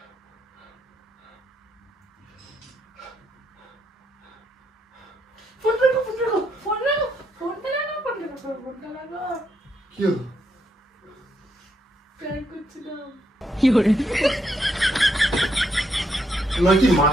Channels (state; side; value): normal; both; correlation 0.77